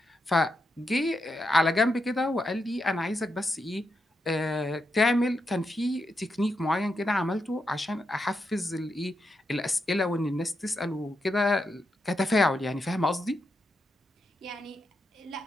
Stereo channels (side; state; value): both; normal; correlation 0.84